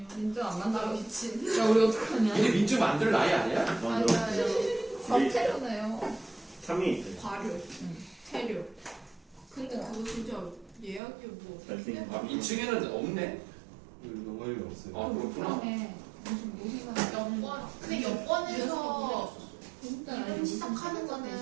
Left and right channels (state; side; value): drops out; left; at 11.0 s